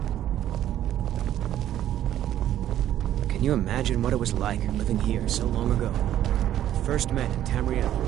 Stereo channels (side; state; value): left; quieter; 11.9 dB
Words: Can you imagine what it was like living here so long ago? First met in